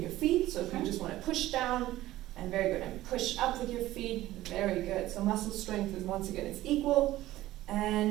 your feet, so if you just want to push down, and very good, and push up with your feet, very good. So muscle strength is, once again, it's equal.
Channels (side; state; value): left; quieter; 15.7 dB